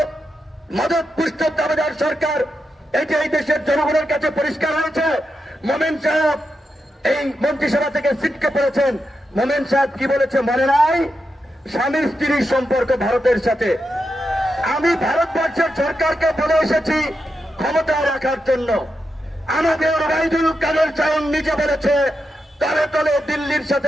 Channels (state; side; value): normal; both; correlation 0.87